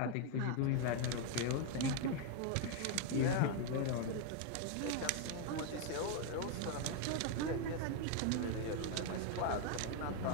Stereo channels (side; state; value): both; different; correlation 0.01